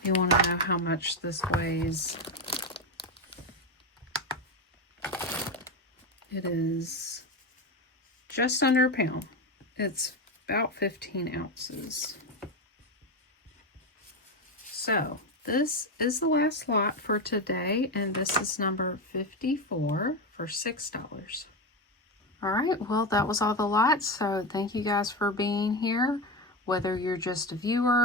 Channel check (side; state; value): both; normal; correlation 0.15